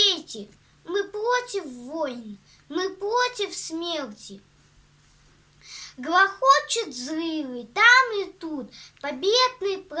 мы против войн, мы против смерти. Грохочут взрывы там и тут, победный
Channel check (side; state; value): both; identical; correlation 1.00